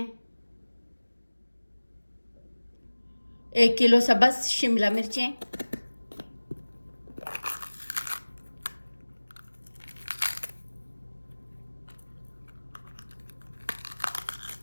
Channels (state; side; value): inverted; both; correlation -1.00